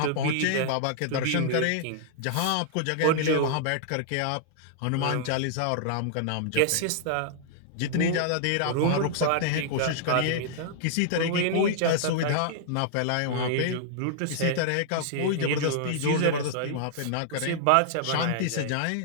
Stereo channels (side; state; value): both; different; correlation -0.01